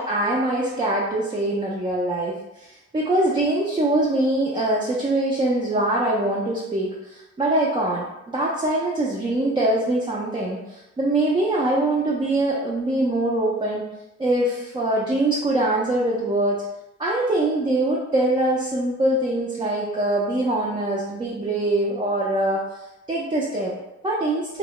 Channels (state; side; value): normal; both; correlation 0.42